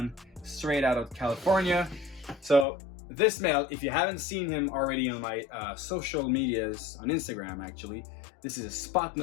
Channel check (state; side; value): drops out; right; at 2.7 s